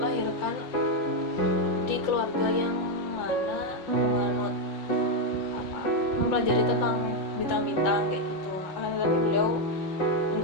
di keluarga yang mana menganut mempelajari tentang bintang-bintang kayak gitu. Tapi beliau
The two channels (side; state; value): right; late; 5.8 ms